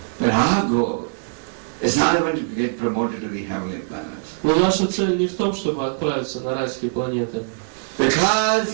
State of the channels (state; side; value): silent; left; digital silence